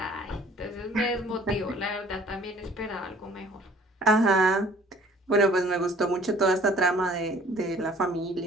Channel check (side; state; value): both; normal; correlation 0.54